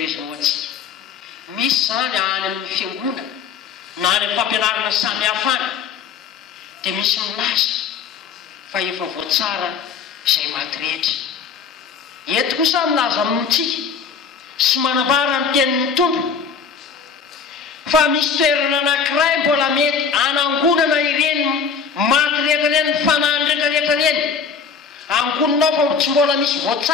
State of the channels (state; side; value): quieter; right; 6.1 dB